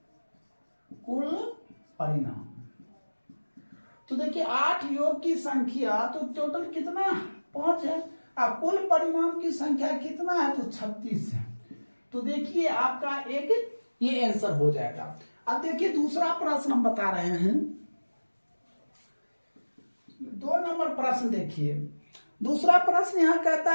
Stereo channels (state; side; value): inverted; both; correlation -1.00